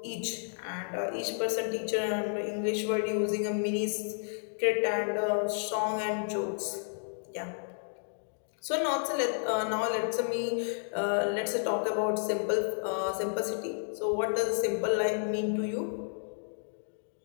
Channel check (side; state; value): right; silent; digital silence